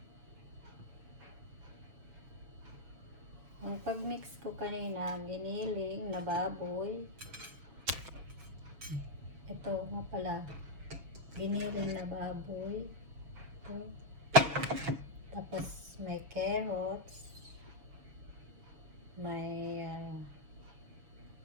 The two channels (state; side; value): late; left; 7.0 ms